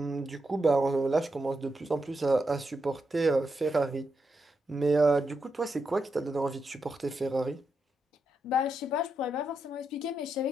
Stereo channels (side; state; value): both; normal; correlation 0.84